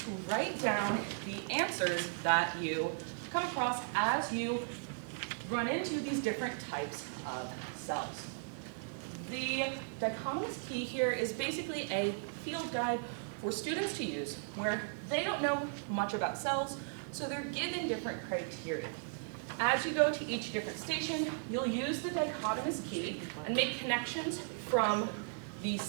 write down the answers that you come across as you run into these different types of cells. The dichotomous key here is basically a field guide for students to use where they don't know much about cells, so they're given different criteria. As you go to each different station, you'll use the dichotomous key and make connections from the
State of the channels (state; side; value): silent; left; digital silence